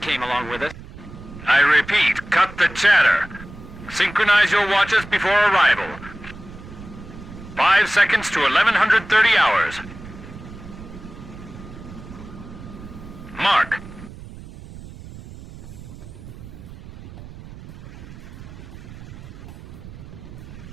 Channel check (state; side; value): noise; right; rumble, 15 dB below the sound